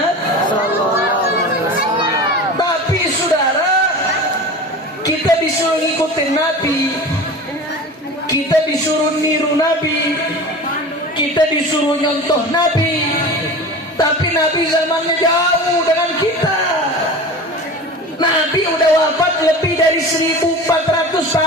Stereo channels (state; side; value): normal; both; correlation 0.34